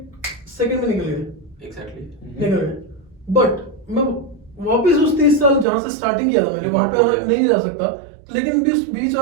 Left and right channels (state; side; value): drops out; left; at 5.7 s